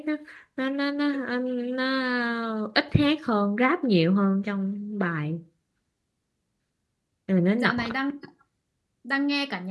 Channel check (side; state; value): both; identical; correlation 1.00